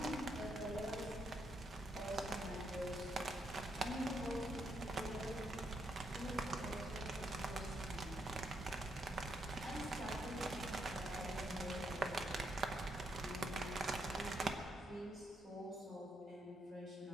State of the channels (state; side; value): normal; both; correlation 0.78